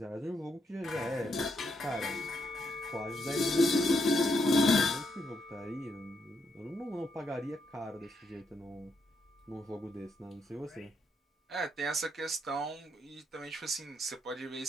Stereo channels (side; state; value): both; normal; correlation 0.78